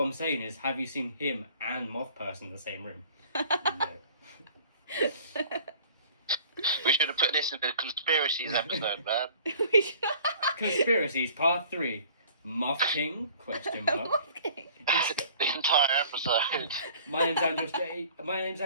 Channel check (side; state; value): both; inverted; correlation -0.50